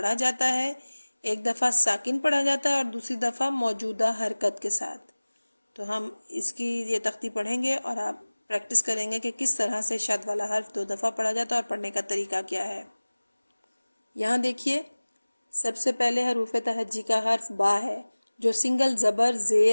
جاتا ہے، ایک دفعہ ساکن پڑھا جاتا ہے اور دوسری دفعہ موجودہ حرکت کے ساتھ۔ تو ہم اس کی یہ تختی پڑھیں گے اور آپ پریکٹس کریں گے کہ کس طرح سے شد والا حرف 2 دفعہ پڑھا جاتا ہے اور پڑھنے کا طریقہ کیا ہے۔ یہاں دیکھیے، سب سے پہلے حروف تہجی کا حرف با ہے، جو سنگل زبر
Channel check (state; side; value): inverted; both; correlation -1.00